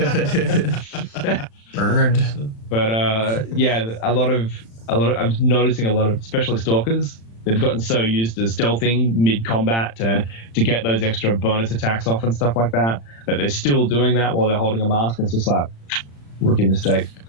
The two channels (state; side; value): late; right; 35 ms